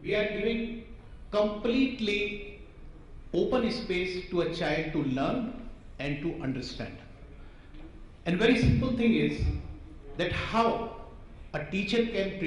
we are giving completely open space to a child to learn and to understand. And very simple thing is that how a teacher can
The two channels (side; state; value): both; identical; correlation 1.00